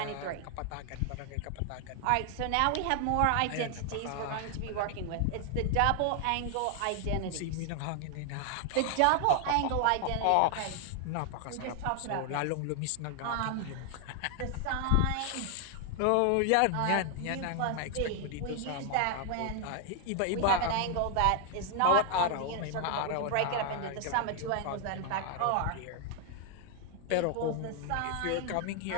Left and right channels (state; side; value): different; both; correlation 0.00